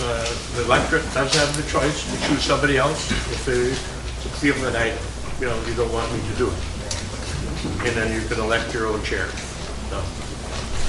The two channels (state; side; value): identical; both; correlation 1.00